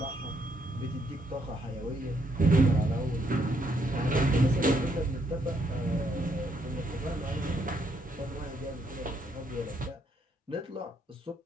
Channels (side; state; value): both; normal; correlation 0.73